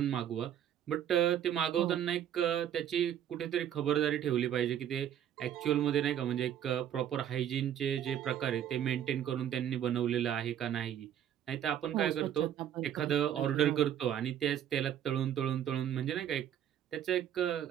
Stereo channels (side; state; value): left; quieter; 10.2 dB